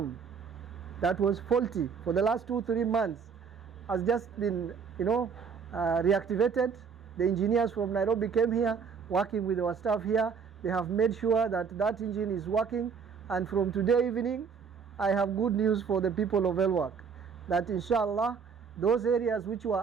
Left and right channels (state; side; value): quieter; left; 6.1 dB